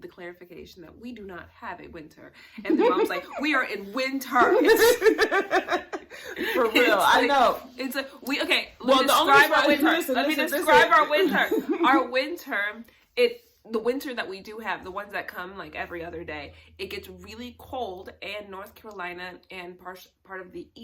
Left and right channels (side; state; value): both; identical; correlation 1.00